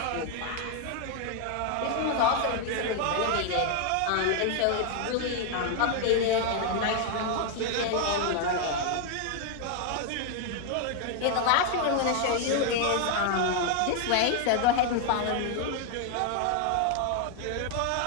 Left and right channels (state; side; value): different; both; correlation 0.00